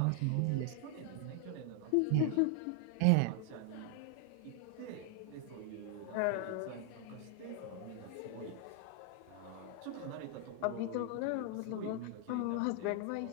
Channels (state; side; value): different; both; correlation 0.00